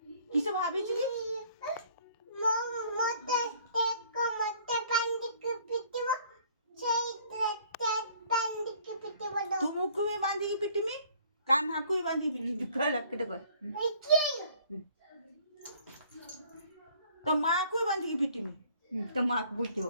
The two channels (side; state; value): both; inverted; correlation -0.57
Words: किसे भाभी जी तुम को भी बांधी की पिट्टी में कान्हा को भी बांधी पिट्टी तो माँ को भी बांधी की पिट्टी में तो माँ को पूछो